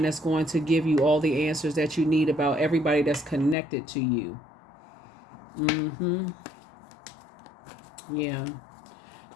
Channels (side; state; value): right; drops out; at 3.6 s